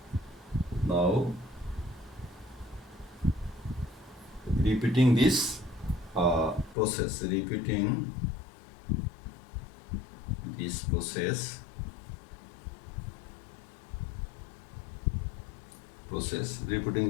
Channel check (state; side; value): drops out; right; at 6.8 s